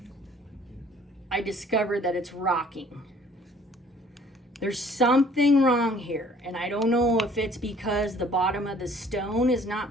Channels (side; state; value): both; normal; correlation 0.55